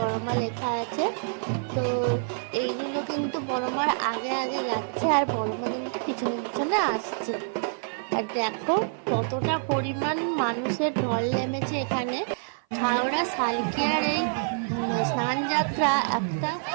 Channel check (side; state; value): left; silent; 56 dB below the other